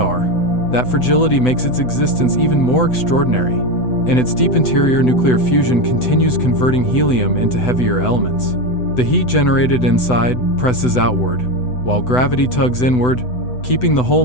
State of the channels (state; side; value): late; right; 8.0 ms